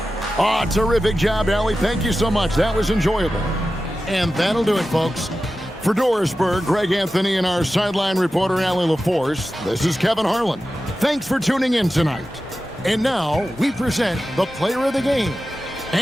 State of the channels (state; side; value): normal; both; correlation 0.93